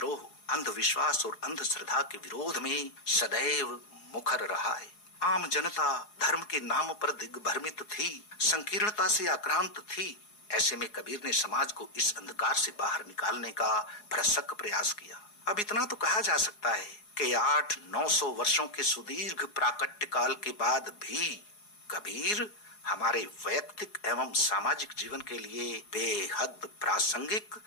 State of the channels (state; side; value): late; right; 4.8 ms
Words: अंधविश्वास और अंधश्रद्धा के विरोध में सदैव मुखर रहा है। आम जनता धर्म के नाम पर दिग्भ्रमित थी, संकीर्णता से आक्रांत थी। ऐसे में कबीर ने समाज को इस अंधकार से बाहर निकालने का भरसक प्रयास किया। अब इतना तो कहा जा सकता है कि 800-900 वर्षों के सुदीर्घ प्राकट्य काल के बाद भी कबीर हमारे वैयक्तिक एवं सामाजिक जीवन के लिए बेहद प्रासंगिक